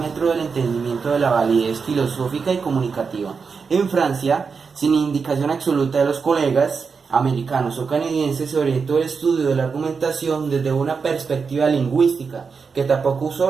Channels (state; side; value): quieter; left; 5.4 dB